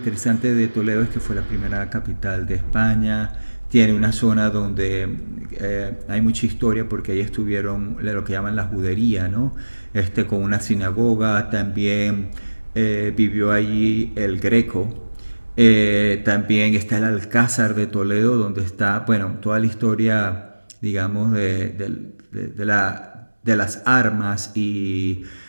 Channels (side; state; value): both; inverted; correlation -1.00